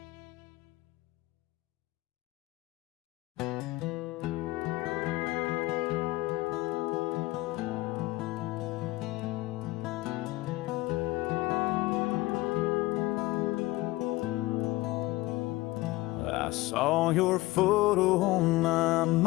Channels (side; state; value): right; quieter; 19.6 dB